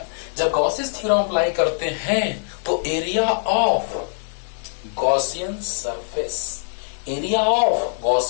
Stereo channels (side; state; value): right; silent; digital silence